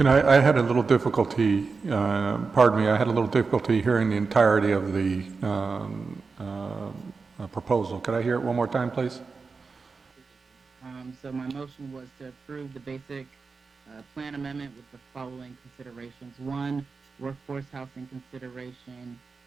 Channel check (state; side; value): quieter; left; 4.6 dB